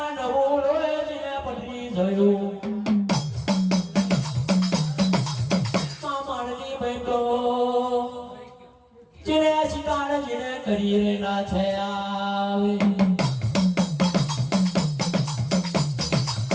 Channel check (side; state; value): both; identical; correlation 1.00